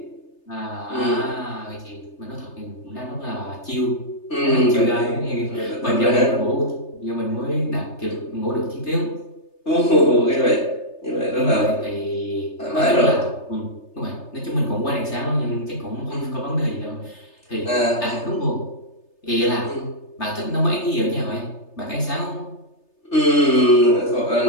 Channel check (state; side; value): late; right; 3.3 ms